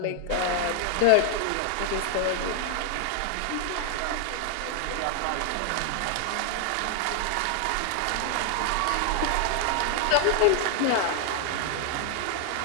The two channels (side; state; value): both; different; correlation 0.00